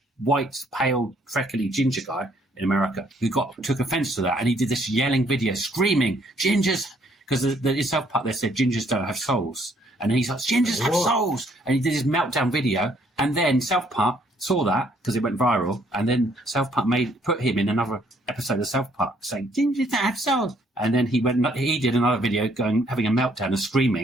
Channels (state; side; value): normal; both; correlation 0.66